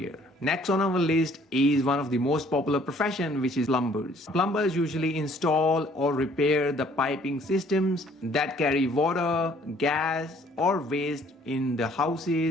Next on our list is one of the most popular profession, which is plumbers. Plumbers usually install or repair the piping systems that carry water, gas, or waste in the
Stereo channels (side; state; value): both; normal; correlation 0.59